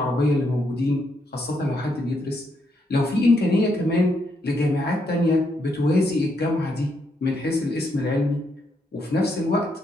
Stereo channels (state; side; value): normal; both; correlation 0.77